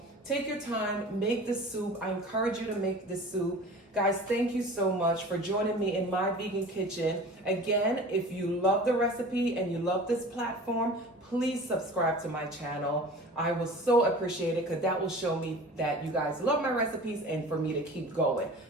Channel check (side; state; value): both; normal; correlation 0.40